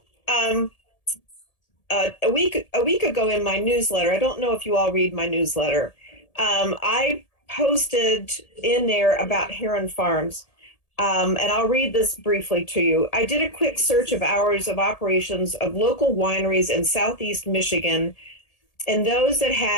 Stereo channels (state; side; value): late; right; 1.8 ms